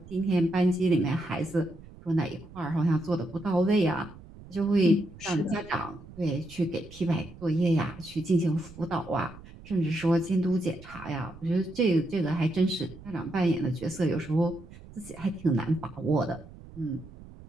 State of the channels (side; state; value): right; noise; rumble, 19 dB below the sound